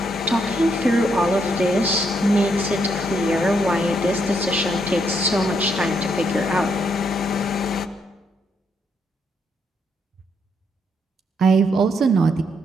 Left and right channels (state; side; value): normal; both; correlation 0.76